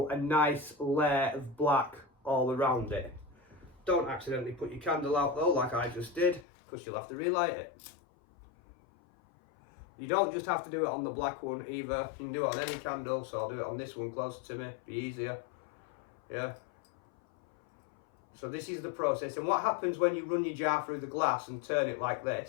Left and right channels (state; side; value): drops out; right; at 6.5 s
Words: a nice layer of black all around it. Don't accidentally put your candle out though, like I just did, because you'll have to relight it. You don't just have to do it on the black one either. You can do it on any candle, so I'll do it on this one closer to me, be easier. Yeah. So this is the process, and what happens when you run your jar through the glass and turn it like